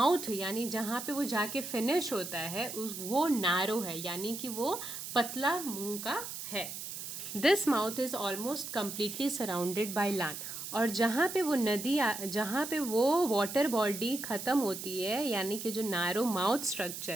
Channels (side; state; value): right; noise; hiss, 8 dB below the sound